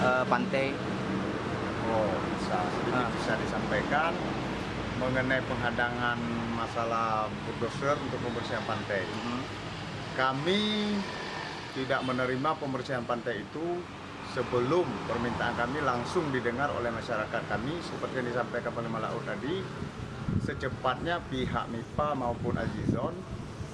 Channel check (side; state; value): both; identical; correlation 1.00